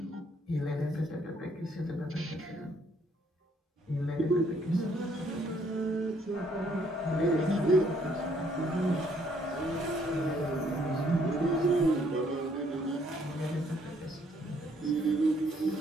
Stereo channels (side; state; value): both; normal; correlation 0.67